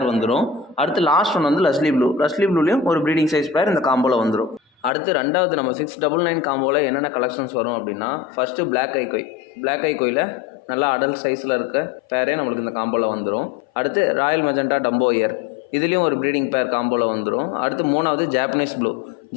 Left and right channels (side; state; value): right; drops out; at 4.9 s